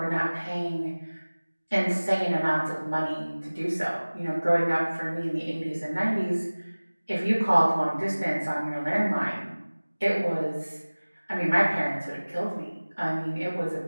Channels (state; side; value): inverted; both; correlation -1.00